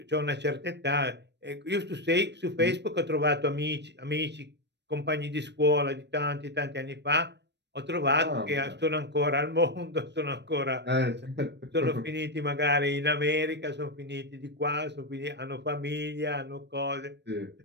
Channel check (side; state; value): left; late; 0.50 ms